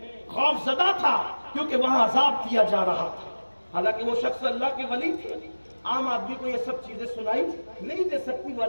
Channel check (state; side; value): inverted; both; correlation -1.00